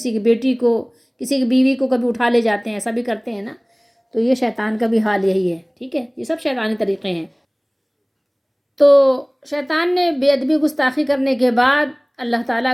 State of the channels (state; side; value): identical; both; correlation 1.00